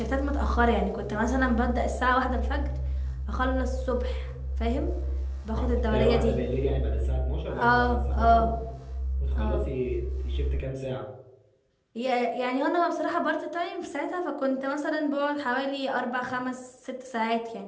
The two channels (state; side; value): identical; both; correlation 1.00